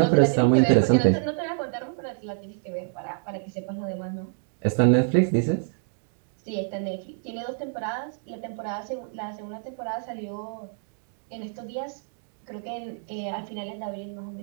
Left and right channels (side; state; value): left; silent; digital silence